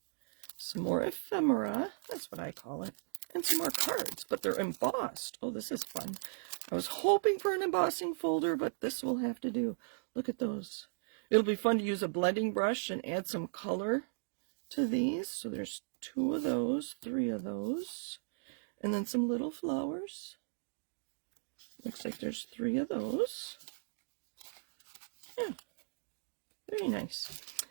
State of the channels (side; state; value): left; silent; digital silence